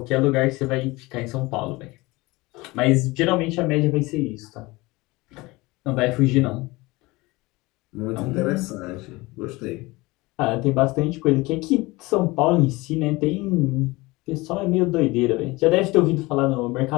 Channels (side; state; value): right; quieter; 22.2 dB